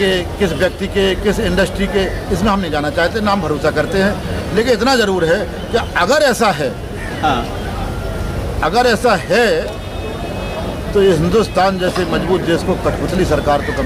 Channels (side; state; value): both; identical; correlation 1.00